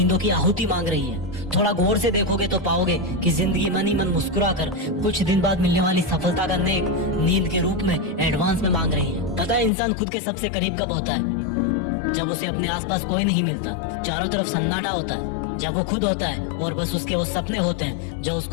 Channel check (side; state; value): right; drops out; at 9.7 s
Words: की आहुति मांग रही है। थोड़ा गौर से देखोगे तो पाओगे कि जिंदगी मन ही मन मुस्कुरा कर कुछ दिन बाद मिलने वाली सफलता का नेक नींद के रूप में एडवांस में मांग रही है। पता है इंसान खुद के सबसे करीब कब होता है? जब उसे अपने आसपास कोई नहीं मिलता, चारों तरफ सन्नाटा होता है, जब वो खुद होता है और बस उसके वो सपने होते हैं जो